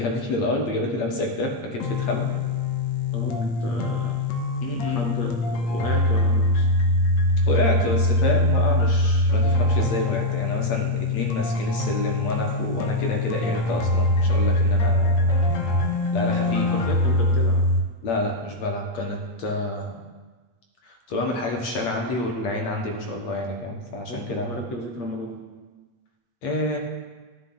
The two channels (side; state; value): right; late; 8.7 ms